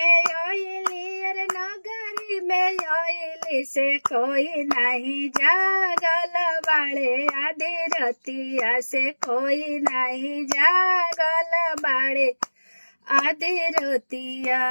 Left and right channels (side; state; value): both; inverted; correlation -1.00